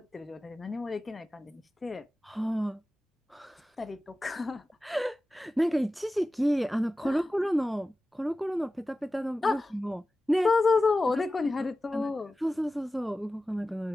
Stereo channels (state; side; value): normal; both; correlation 0.95